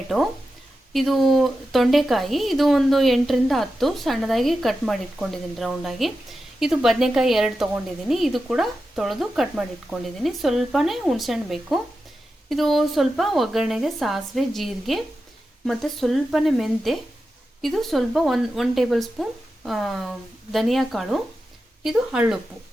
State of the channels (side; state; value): both; normal; correlation 0.91